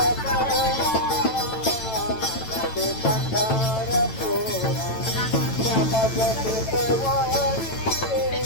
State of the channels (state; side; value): late; right; 9.0 ms